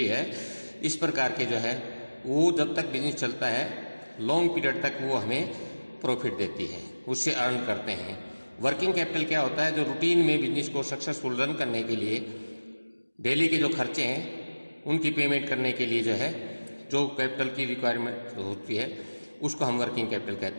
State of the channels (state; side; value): inverted; both; correlation -1.00